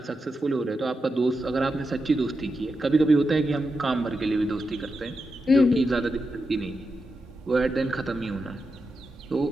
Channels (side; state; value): both; normal; correlation 0.88